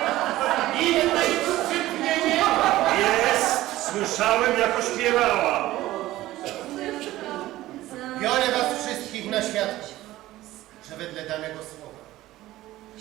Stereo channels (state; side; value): quieter; left; 16.1 dB